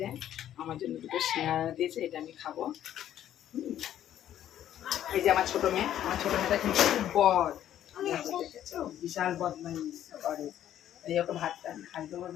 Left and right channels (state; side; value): quieter; right; 11.3 dB